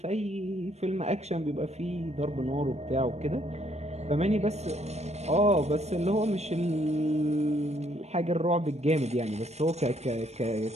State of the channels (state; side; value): late; left; 0.31 ms